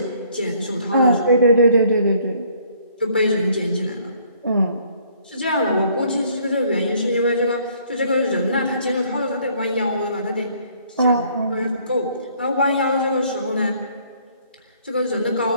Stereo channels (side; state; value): both; inverted; correlation -0.62